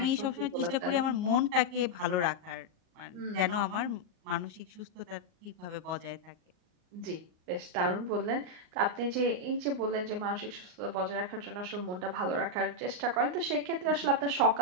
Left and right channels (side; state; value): left; late; 39 ms